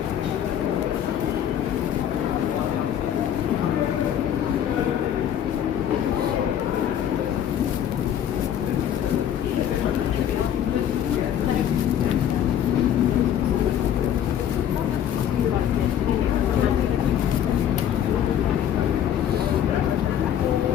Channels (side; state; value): right; quieter; 9.9 dB